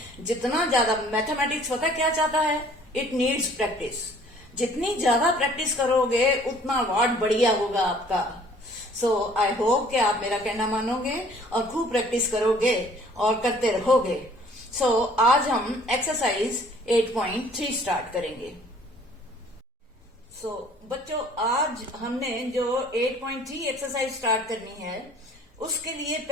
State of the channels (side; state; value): both; normal; correlation 0.55